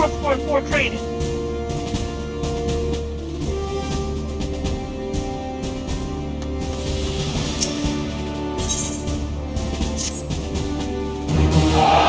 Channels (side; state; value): both; identical; correlation 1.00